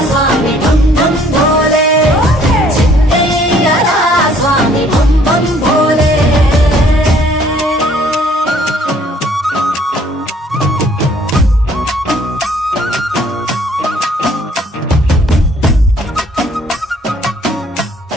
స్వామి భం భం భోలే చిందయ్యరా స్వామి భం భం భోలే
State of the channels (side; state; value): both; normal; correlation 0.60